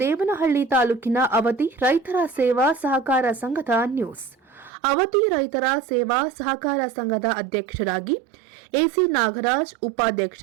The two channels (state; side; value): drops out; left; at 4.7 s